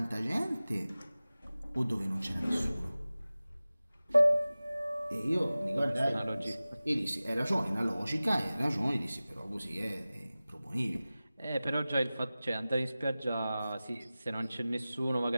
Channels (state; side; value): inverted; both; correlation -0.97